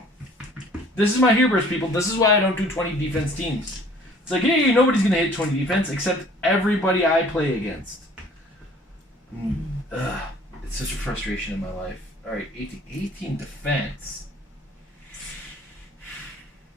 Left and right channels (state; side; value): normal; both; correlation 0.53